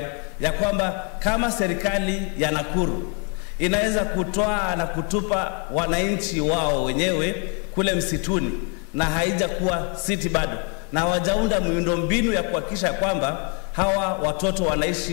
ya kwamba kama serikali ya Nakuru inaweza kutoa na kutupa wananchi wao wenyewe kule msituni na haija kuwa city bado, na hawajaunda miundo mbinu ya kuhakikisha kwamba hawa watoto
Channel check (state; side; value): quieter; right; 37.6 dB